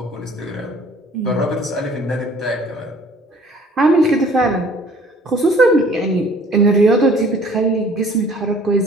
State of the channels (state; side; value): normal; both; correlation 0.54